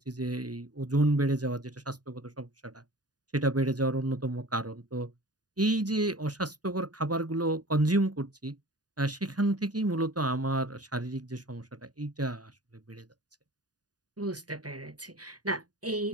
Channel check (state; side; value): late; left; 0.68 ms